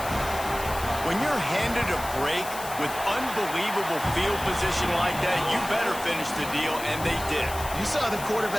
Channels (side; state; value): left; noise; hiss, 11 dB below the sound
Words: When you're handed a break with unbelievable field position like that, you better finish the deal, and they did. You saw the